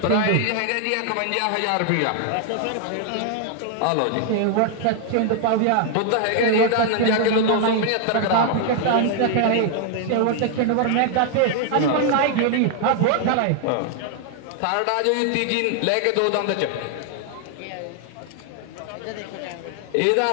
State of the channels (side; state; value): both; different; correlation 0.00